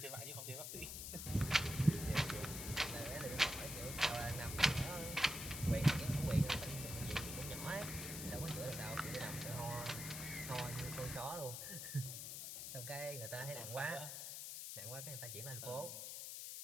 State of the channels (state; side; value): noise; left; hiss, 6 dB below the sound